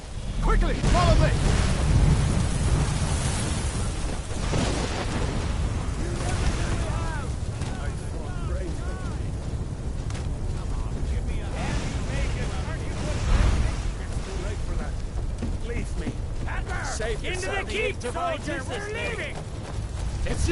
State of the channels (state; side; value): identical; both; correlation 1.00